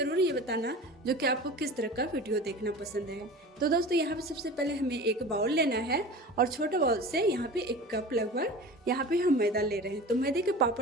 ये बताना जो कि आपको किस तरह का वीडियो देखना पसंद है। तो दोस्तों, यहाँ पे सबसे पहले हमें एक बाउल लेना है और छोटे बाउल से यहाँ पे 1 कप लगभग यहाँ पे हम मैदा ले रहे हैं। तो मैदे के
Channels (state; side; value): normal; both; correlation 0.36